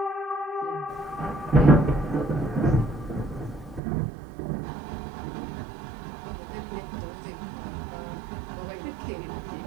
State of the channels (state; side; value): drops out; left; at 3.8 s